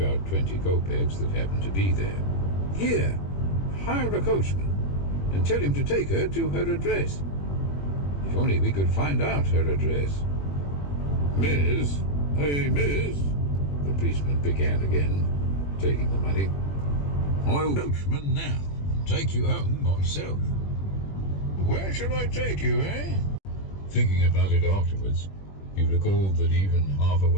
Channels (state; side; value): late; right; 21 ms